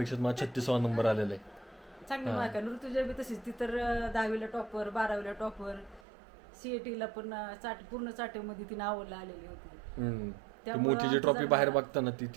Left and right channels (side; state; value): left; drops out; at 6.0 s